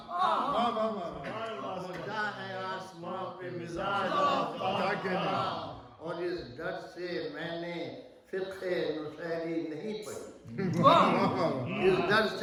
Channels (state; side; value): identical; both; correlation 1.00